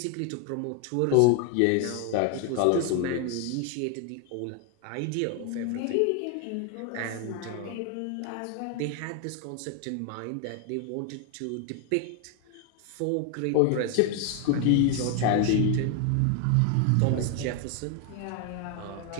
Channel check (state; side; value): different; both; correlation 0.01